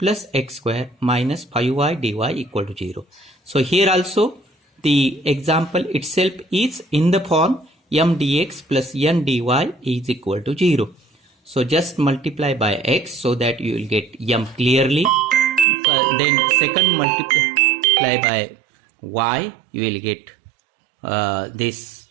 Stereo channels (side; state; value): left; drops out; at 15.7 s